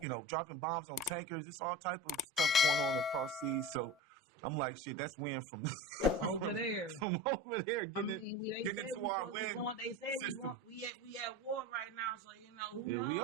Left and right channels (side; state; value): both; normal; correlation 0.31